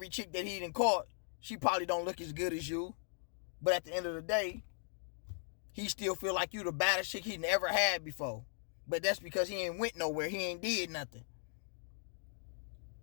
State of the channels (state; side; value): silent; right; digital silence